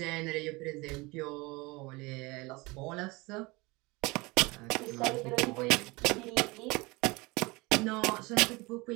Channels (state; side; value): quieter; left; 24.2 dB